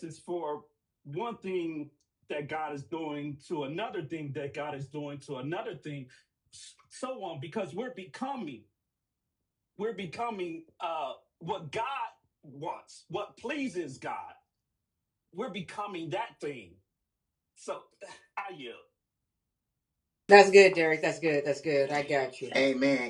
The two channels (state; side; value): identical; both; correlation 1.00